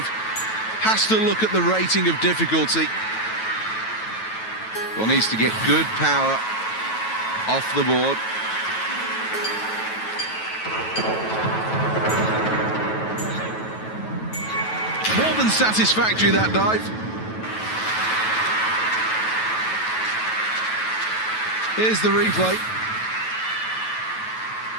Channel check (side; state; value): right; late; 9.2 ms